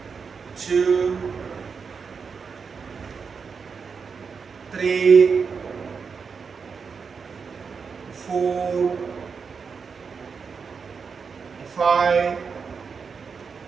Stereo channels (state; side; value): quieter; left; 5.6 dB